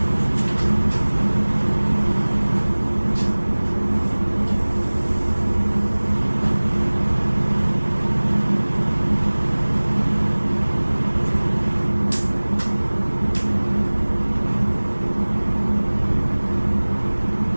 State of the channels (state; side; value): inverted; both; correlation -1.00